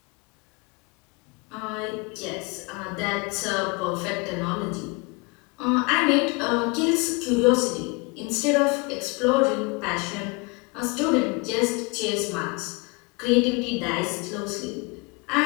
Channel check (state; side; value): quieter; right; 28.8 dB